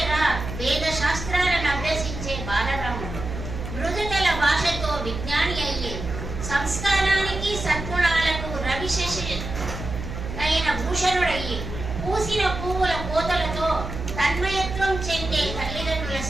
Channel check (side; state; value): right; noise; hum, 7 dB below the sound